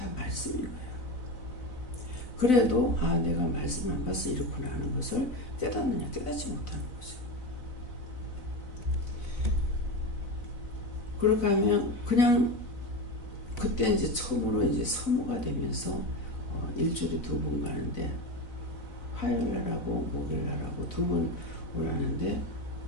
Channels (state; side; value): late; right; 4.0 ms